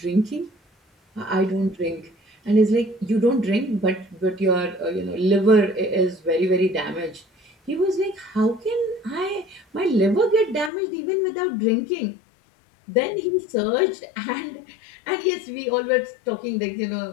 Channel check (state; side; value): drops out; right; at 10.7 s